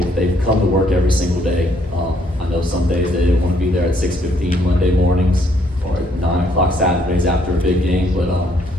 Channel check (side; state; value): both; normal; correlation 0.68